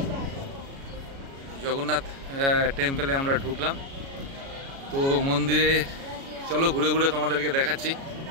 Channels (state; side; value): late; left; 36 ms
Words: জগন্নাথ টেম্পলে। আমরা ঢুকলাম। তো মন্দিরে চলো ঘুরে ঘুরে তোমাদেরকে দেখাচ্ছি।